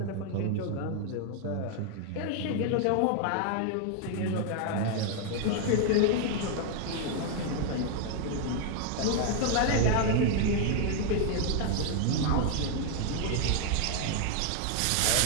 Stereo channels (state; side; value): different; both; correlation 0.00